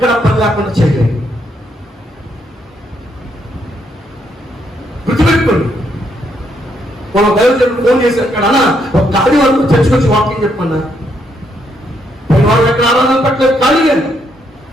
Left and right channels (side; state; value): both; normal; correlation 0.75